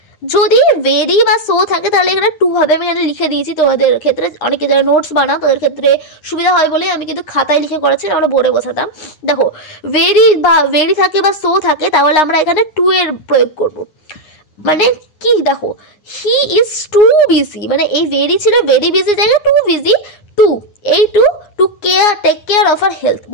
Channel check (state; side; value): late; right; 9.7 ms